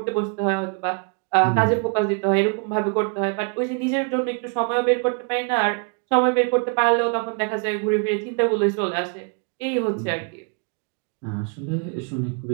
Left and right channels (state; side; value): quieter; left; 36.9 dB